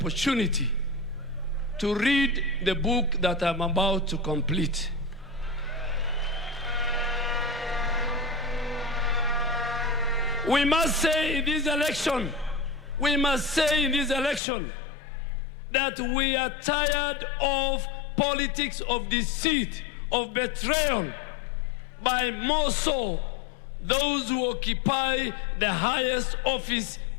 to read the book that I'm about to complete. We must say in this election, that we are tired of politics of deceit, of betrayal, by more so those who occupy the highest office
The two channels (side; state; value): right; drops out; at 14.4 s